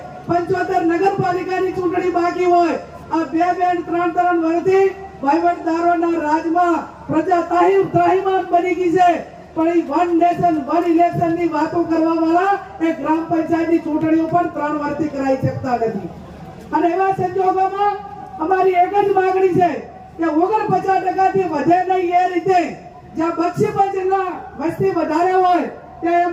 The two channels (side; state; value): both; identical; correlation 1.00